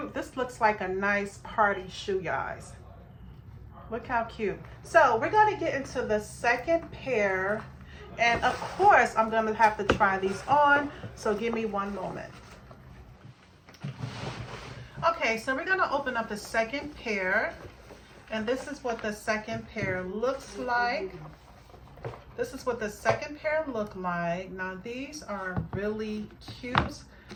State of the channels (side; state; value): both; identical; correlation 1.00